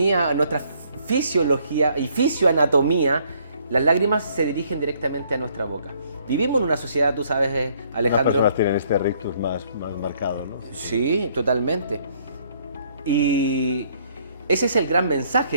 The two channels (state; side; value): inverted; both; correlation -0.65